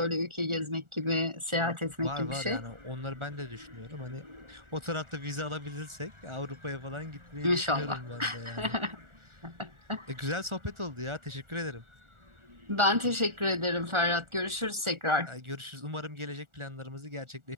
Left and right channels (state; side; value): late; left; 1.4 ms